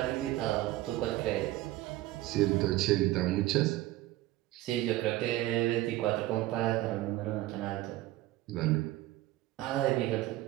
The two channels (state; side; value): quieter; left; 16.5 dB